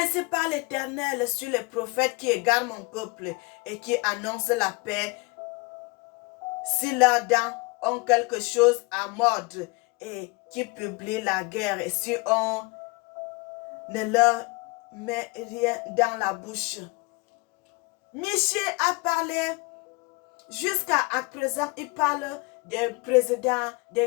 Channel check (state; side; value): quieter; right; 26.9 dB